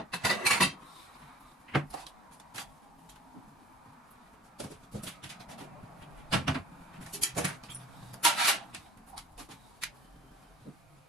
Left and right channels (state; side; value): normal; both; correlation 0.47